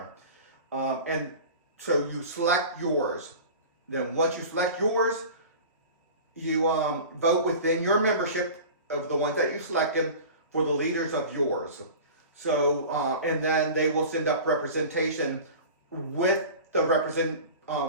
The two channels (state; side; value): inverted; both; correlation -0.36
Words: And so you select yours. Then once you select yours, you vote within your membership of the ones that you selected for the leaders of yours. So and then they will send up representation with the